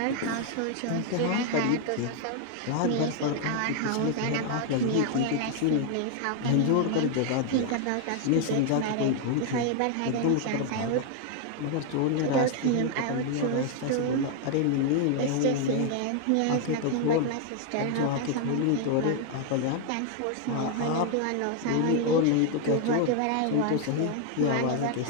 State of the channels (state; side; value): different; both; correlation 0.00